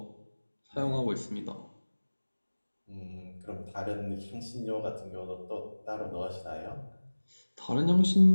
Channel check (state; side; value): inverted; both; correlation -1.00